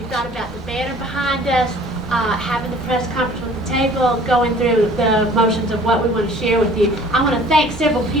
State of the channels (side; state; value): both; normal; correlation 0.50